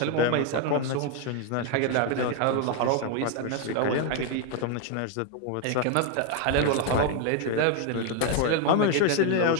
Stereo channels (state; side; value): different; both; correlation 0.01